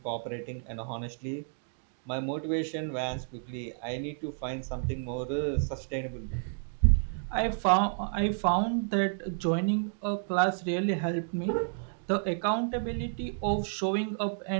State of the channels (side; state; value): left; silent; digital silence